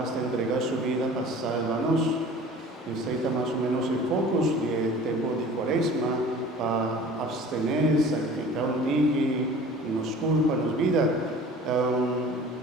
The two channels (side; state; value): both; normal; correlation 0.44